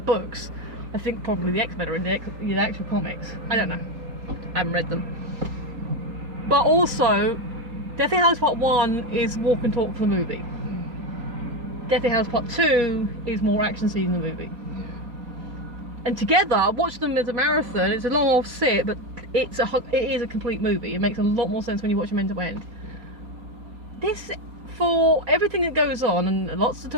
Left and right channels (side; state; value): left; late; 4.2 ms